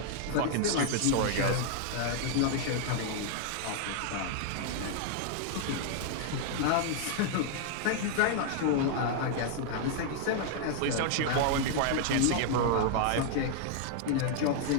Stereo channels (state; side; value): different; both; correlation 0.00